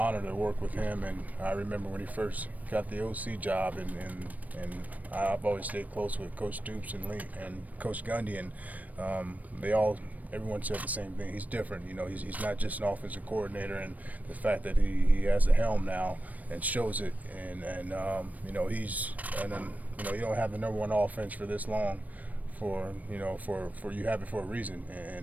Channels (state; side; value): late; left; 0.075 ms